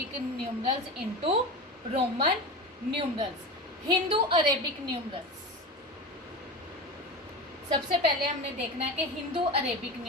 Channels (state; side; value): normal; both; correlation 0.26